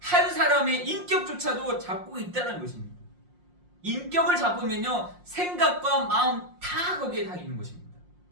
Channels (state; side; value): late; left; 5.6 ms